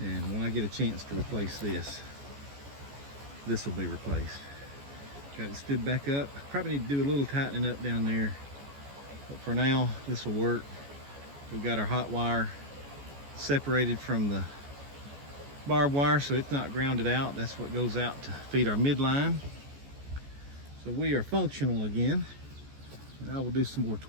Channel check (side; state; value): left; late; 14 ms